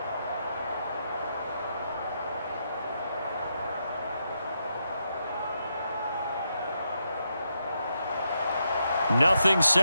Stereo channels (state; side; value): inverted; both; correlation -0.82